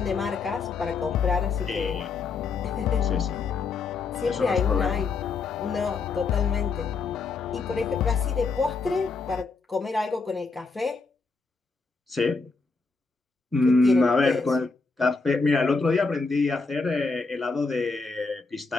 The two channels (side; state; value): right; quieter; 4.3 dB